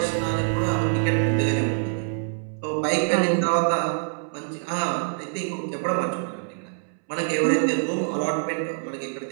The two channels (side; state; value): left; silent; 62 dB below the other